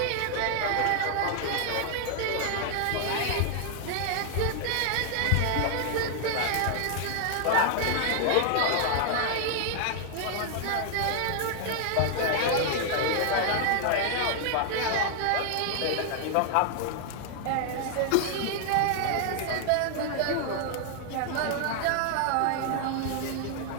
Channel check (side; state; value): both; different; correlation 0.00